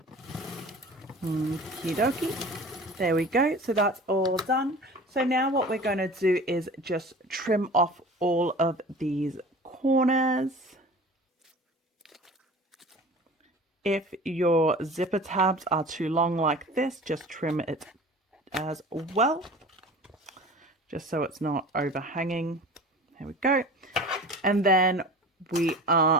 Okie dokie. There we go. So that's all done. So now what we're going to do is just trim off all of these corners. If your zipper tabs are too long like this, just trim it as well, just so it's not overhanging. There we go. And then we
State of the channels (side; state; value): both; normal; correlation 0.39